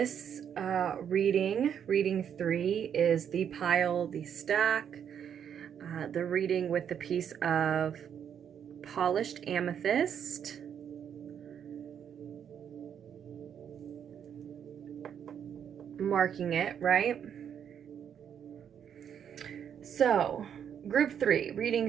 reading 3, is the pile, the stack, the reading with the piece of polished amethyst. Marking it, right? So, group 3,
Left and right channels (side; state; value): left; quieter; 8.4 dB